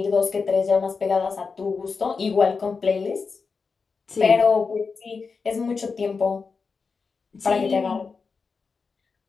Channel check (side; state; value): right; quieter; 4.9 dB